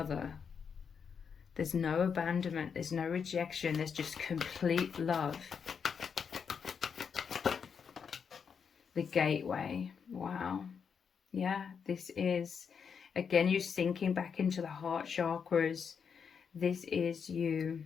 There's no abandonment, there's no rejection, there's just complete love. The gateway, wow. Yeah, this is, again, you sinking back into the heart chakras. This is you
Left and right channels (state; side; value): quieter; right; 6.6 dB